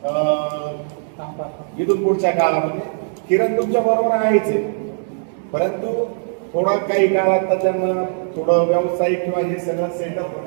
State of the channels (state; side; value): silent; left; digital silence